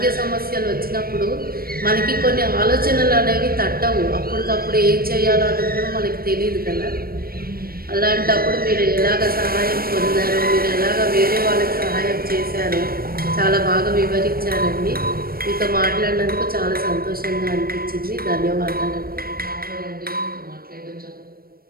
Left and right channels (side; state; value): left; late; 0.44 ms